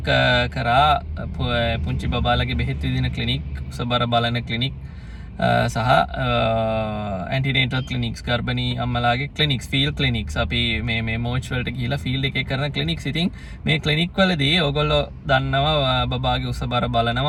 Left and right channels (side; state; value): both; identical; correlation 1.00